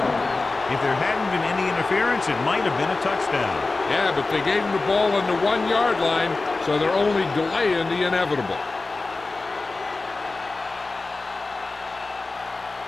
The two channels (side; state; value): right; quieter; 3.5 dB